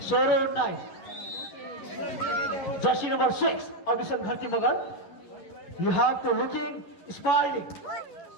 jersey number 6 Abhishan Gharti Magar you have to looking smiling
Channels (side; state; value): right; late; 11 ms